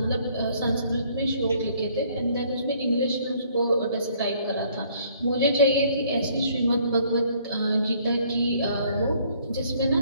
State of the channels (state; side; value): inverted; both; correlation -0.62